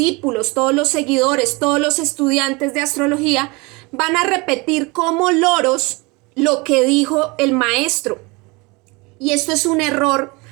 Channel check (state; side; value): quieter; left; 26.5 dB